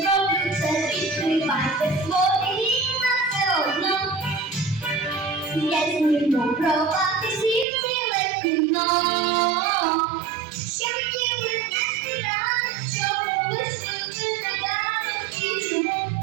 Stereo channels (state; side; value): drops out; left; at 7.7 s